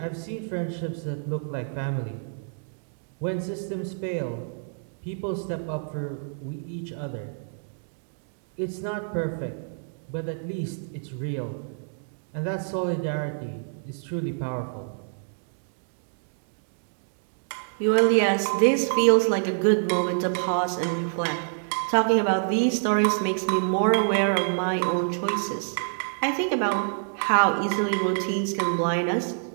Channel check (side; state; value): left; silent; digital silence